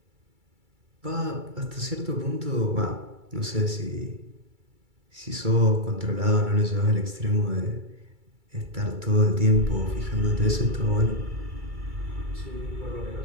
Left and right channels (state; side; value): late; left; 2.3 ms